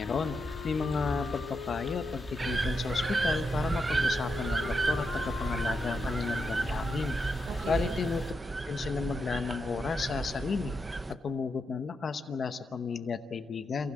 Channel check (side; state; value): both; normal; correlation 0.84